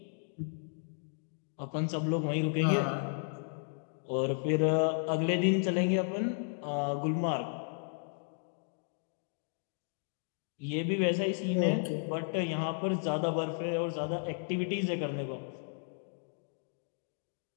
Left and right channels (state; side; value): silent; right; digital silence